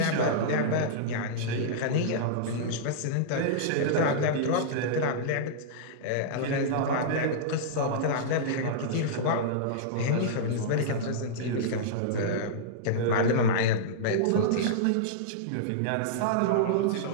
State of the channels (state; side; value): different; both; correlation -0.03